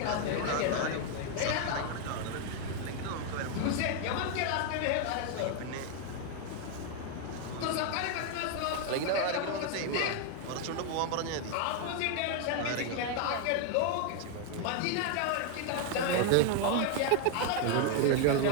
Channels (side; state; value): both; different; correlation 0.01